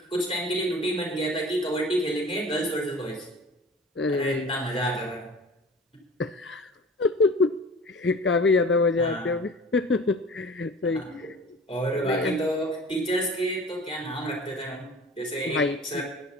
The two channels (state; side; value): normal; both; correlation 0.42